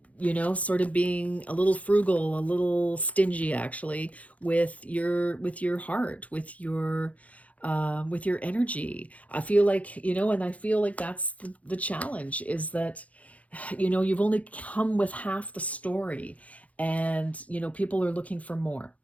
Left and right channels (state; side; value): late; right; 0.068 ms